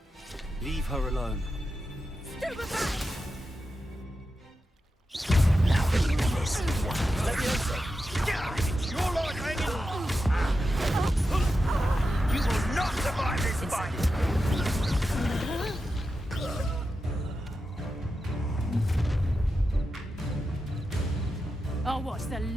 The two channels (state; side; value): normal; both; correlation 0.90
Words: Leave her alone. Stupefy! Now listen, Leviosa. It's your life hanging on. You will not survive this fight. I'll watch the